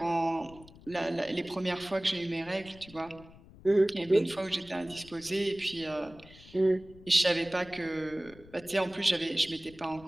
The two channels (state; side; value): noise; left; rumble, 21 dB below the sound